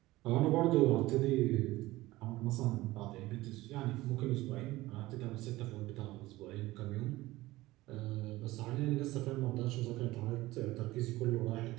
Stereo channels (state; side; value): quieter; left; 18.3 dB